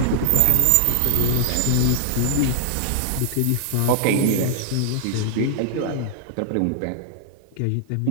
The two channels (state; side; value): different; both; correlation 0.00